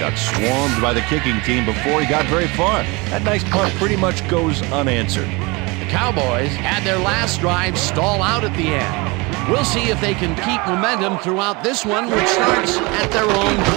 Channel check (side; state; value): left; quieter; 26.1 dB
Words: got swarmed by the kicking team before he got very far. That nice punt pretty much goes unanswered. The Cowboys had their last drive stall out at the end. We'll see if they can keep momentum throughout this one, which starts at their own